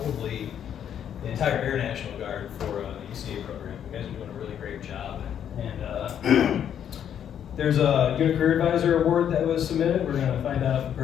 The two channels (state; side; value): quieter; right; 9.3 dB